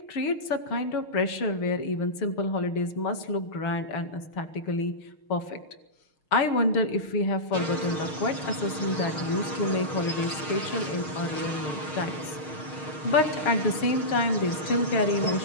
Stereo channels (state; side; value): late; right; 6.5 ms